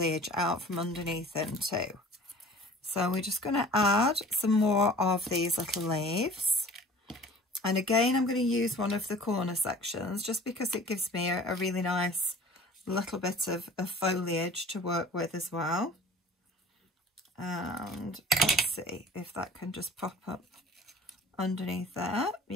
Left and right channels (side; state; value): both; normal; correlation 0.45